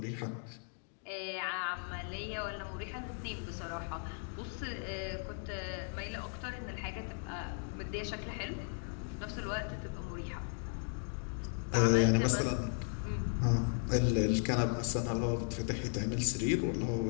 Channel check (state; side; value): silent; right; 54 dB below the other